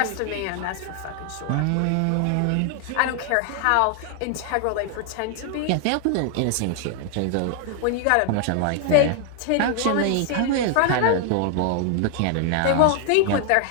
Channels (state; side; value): different; both; correlation 0.00